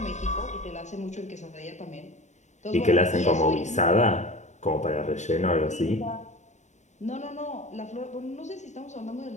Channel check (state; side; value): late; right; 0.34 ms